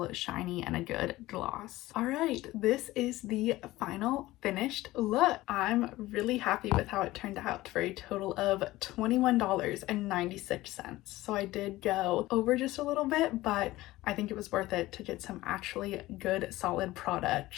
shiny and a good gloss. All right, this is the final finished look. I'm really happy with how it turned out for a total of $21.96. So I did go over just a little bit, but I think it was worth it to get some actually good solid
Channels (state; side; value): quieter; right; 17.6 dB